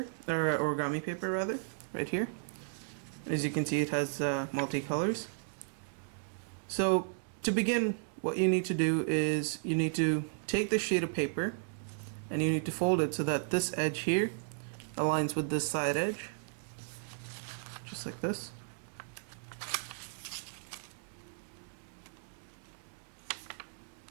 or origami paper rather, right here. As you can see, it has multicolors. So to begin, what you need to do is you need to take the sheet of paper and you need to fold it so that this edge here aligns with this side edge, just like this.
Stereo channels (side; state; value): left; silent; digital silence